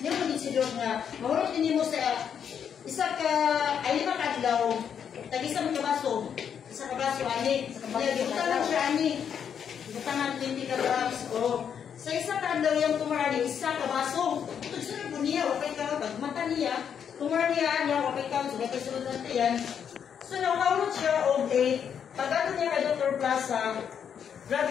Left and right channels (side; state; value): right; quieter; 7.9 dB